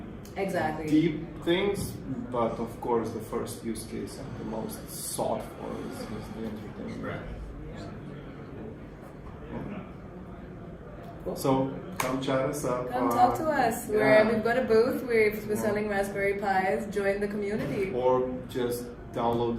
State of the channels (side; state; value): both; identical; correlation 1.00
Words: deep things, but of course, the first use case and the most sought for is the entertainment. Right. So come chat us up. Come talk to us. We've got a booth. We're selling Raspberry Pis. Join the community. Or just